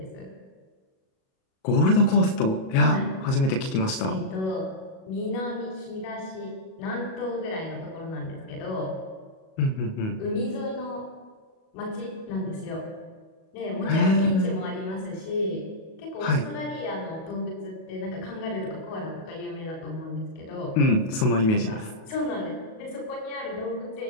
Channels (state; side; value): late; right; 37 ms